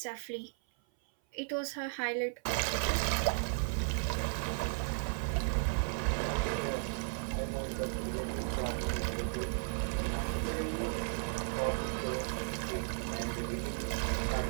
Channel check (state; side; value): silent; left; 54 dB below the other